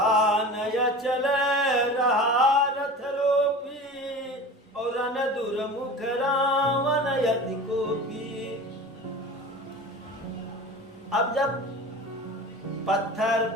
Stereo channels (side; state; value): both; normal; correlation 0.35